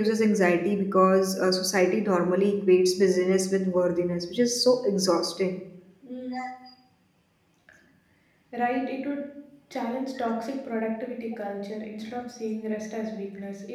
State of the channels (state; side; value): identical; both; correlation 1.00